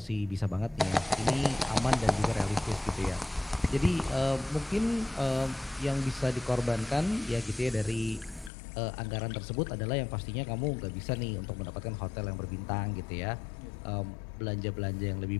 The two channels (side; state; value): right; drops out; at 8.5 s